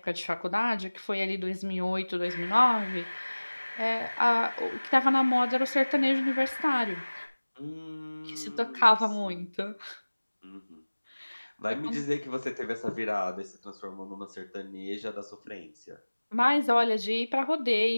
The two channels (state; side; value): inverted; both; correlation -1.00